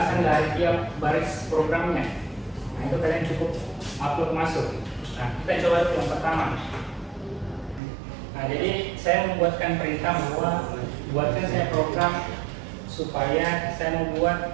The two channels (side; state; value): left; drops out; at 7.8 s